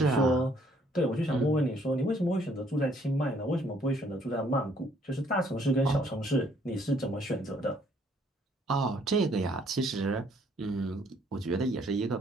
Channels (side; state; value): both; normal; correlation 0.65